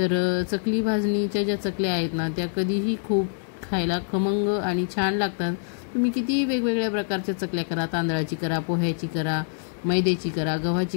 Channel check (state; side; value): silent; right; digital silence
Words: चकली भाजणीच्या ज्या चकल्या आहेत ना त्या कधीही खूप खायला खमंग आणि छान लागतात। तुम्ही कितीही वेगवेगळ्या प्रकारच्या चकल्या करा, तांदळाची करा, पोह्याची करा, मैद्याची करा, गव्हाची